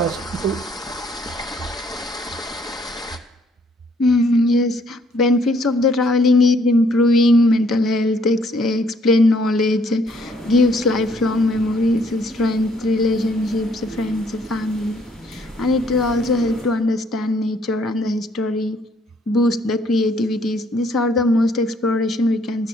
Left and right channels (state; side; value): normal; both; correlation 0.65